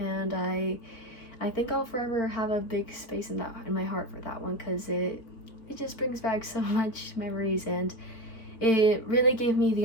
I think I'll forever have a big space in my heart for that one, because it just brings back so much memories, and it really gave me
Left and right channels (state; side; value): late; right; 4.4 ms